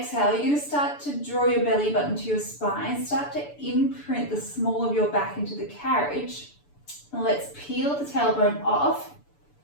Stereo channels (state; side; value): late; right; 6.9 ms